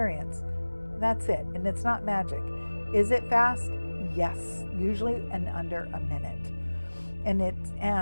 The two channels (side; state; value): both; inverted; correlation -1.00